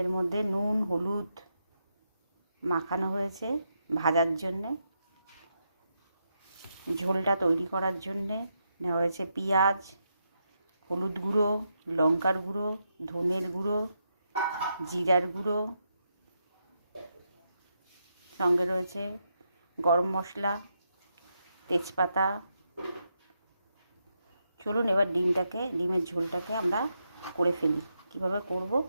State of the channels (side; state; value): both; inverted; correlation -0.82